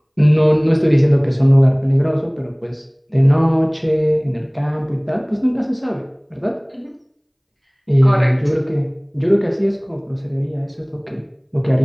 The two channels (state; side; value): identical; both; correlation 1.00